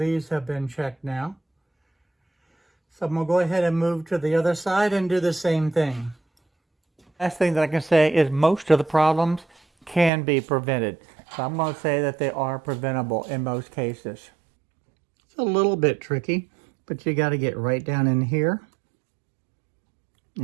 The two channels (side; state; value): left; drops out; at 10.1 s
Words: have been checked now. So I'm going to go ahead and move to the other side and do the same thing. Last thing that I can say is most of the problems can be prevented. So I'm going to say that they are preventable in most cases. It's a little bit tricky, but you got to get right down in here